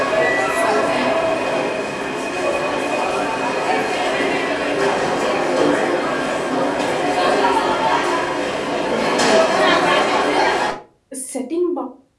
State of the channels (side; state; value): both; identical; correlation 1.00